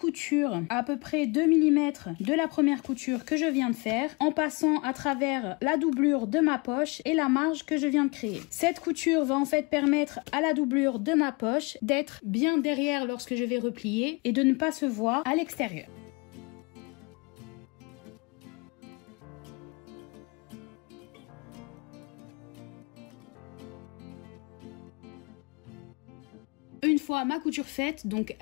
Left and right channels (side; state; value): right; quieter; 28.5 dB